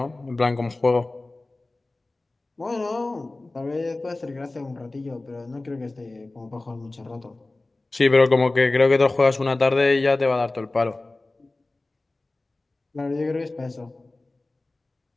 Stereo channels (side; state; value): right; quieter; 3.0 dB